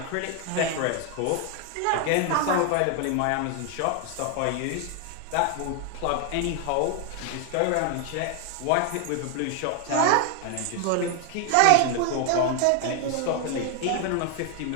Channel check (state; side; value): different; both; correlation 0.00